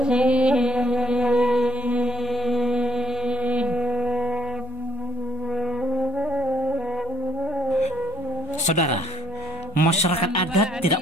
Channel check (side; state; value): both; normal; correlation 0.68